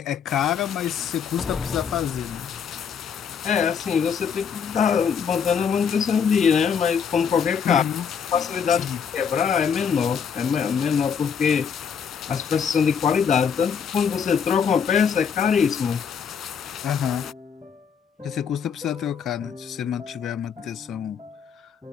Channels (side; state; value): right; quieter; 6.9 dB